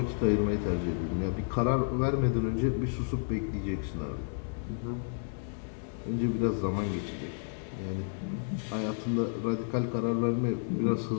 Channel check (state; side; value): silent; right; 57 dB below the other